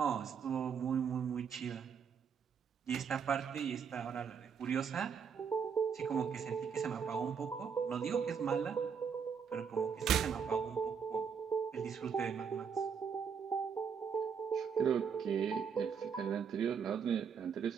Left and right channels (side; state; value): left; quieter; 6.7 dB